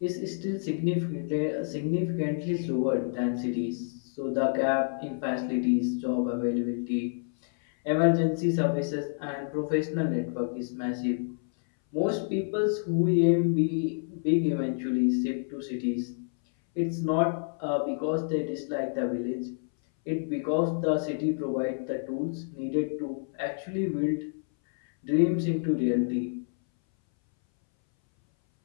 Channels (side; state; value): right; silent; 59 dB below the other